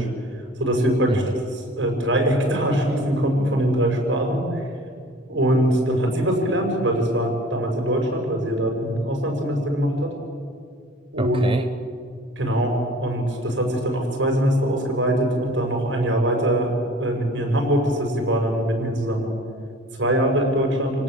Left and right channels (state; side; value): normal; both; correlation 0.47